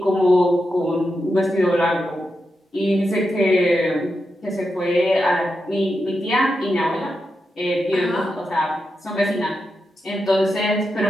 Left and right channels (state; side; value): normal; both; correlation 0.87